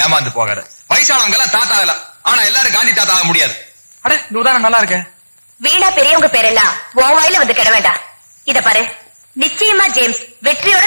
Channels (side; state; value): both; inverted; correlation -1.00